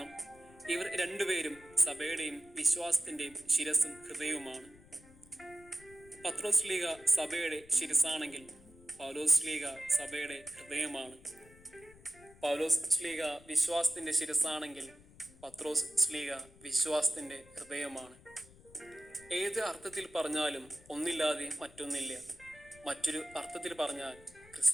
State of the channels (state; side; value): noise; left; rumble, 24 dB below the sound